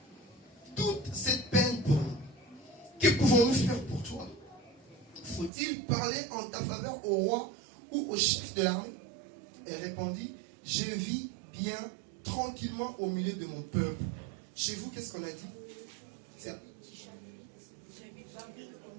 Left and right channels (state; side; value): drops out; left; at 5.5 s